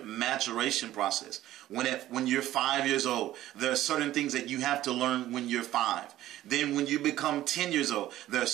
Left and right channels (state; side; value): quieter; left; 14.2 dB